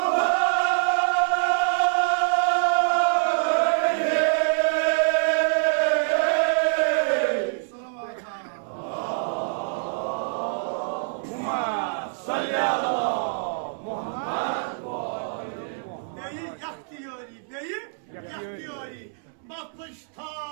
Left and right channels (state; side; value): silent; left; 61 dB below the other